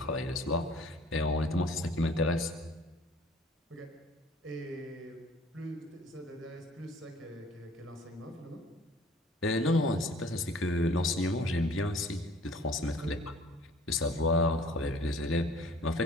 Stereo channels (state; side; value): normal; both; correlation 0.52